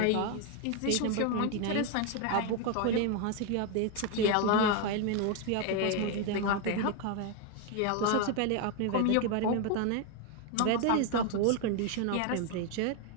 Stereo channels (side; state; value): both; different; correlation 0.01